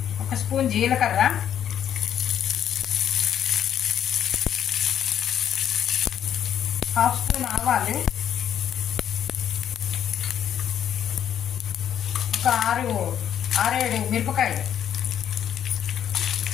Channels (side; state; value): right; quieter; 9.8 dB